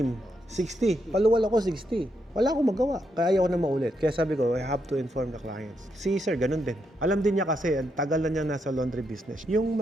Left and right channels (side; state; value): both; normal; correlation 0.80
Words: 60. Paluwal ako, 60. Wala akong magawa. Kaya ayaw ko na maulit. Kaya sabi ko, I have to inform the clients. Si sir, ganun din. Alam din niya kasi, ang tagal na niya nasa laundry business. Yung